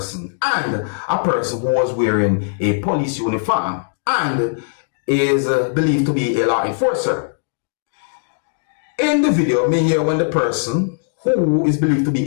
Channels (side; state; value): right; silent; digital silence